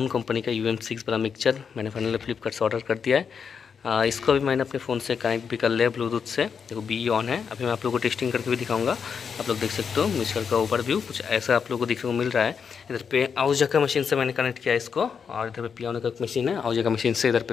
कंपनी का UM6 वाला मिक्सचर मैंने फाइनली फ्लिपकार्ट से ऑर्डर कर दिया है। इसको भी मैंने अपने फ़ोन से कनेक्ट भी कर लिया ब्लूटूथ से। देखो BE ऑन है। अभी मैं आप लोगों को टेस्टिंग करके भी दिखाऊंगा। आप लोग देख सकते हो मिक्सचर का ओवरव्यू कुछ ऐसा आप लोगों को देखने को मिल रहा है। इधर पे आउजा का मशीन से मैंने कनेक्ट किया इसको, और इधर पे पियानो का मशीन है। आउजा का मशीन से इधर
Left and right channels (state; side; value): quieter; right; 6.5 dB